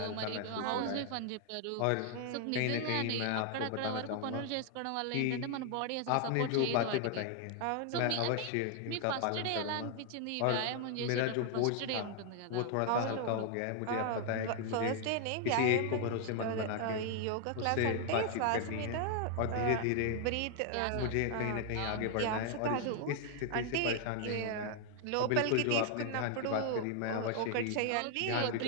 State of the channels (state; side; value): different; both; correlation 0.00